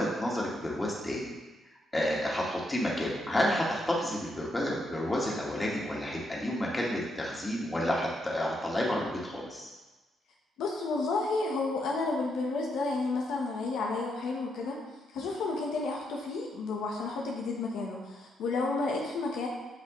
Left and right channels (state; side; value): normal; both; correlation 0.79